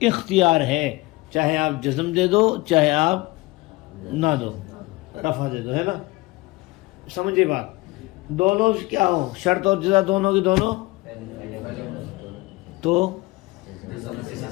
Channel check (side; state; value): right; quieter; 22.0 dB